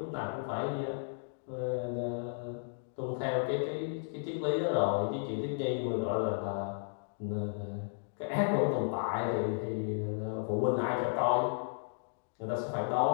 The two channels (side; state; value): right; silent; digital silence